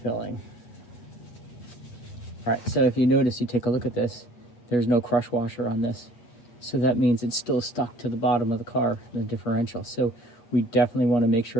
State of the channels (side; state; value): right; late; 8.4 ms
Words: All right, so if you notice, you take a look at this, there's no crush washer on this. So that means it's still stuck to the bottom of the car, the differential. So we definitely want to make